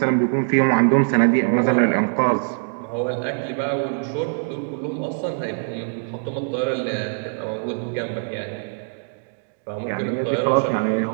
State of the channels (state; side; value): silent; left; digital silence